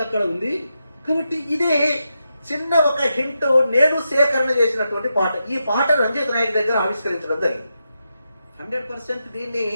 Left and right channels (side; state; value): both; inverted; correlation -0.87